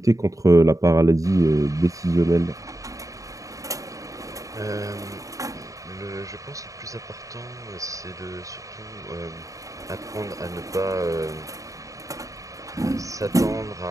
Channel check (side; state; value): left; late; 0.16 ms